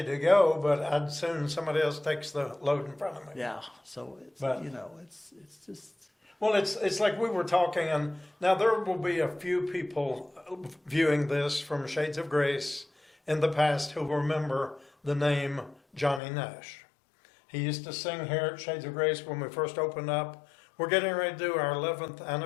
to go, but I'd soon somebody else takes the load in front of me. Yeah, so it's But- it's just Well, it's like we were talking, and now there will be a few people viewing this from Shades of Grace in the past who remember the name Johnny Nash. He used to sing here at Shades of Grace when we first opened up. We're getting ready to do our 11th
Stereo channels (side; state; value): right; drops out; at 16.2 s